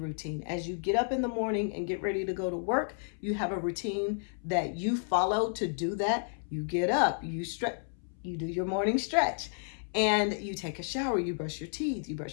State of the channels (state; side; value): silent; right; 57 dB below the other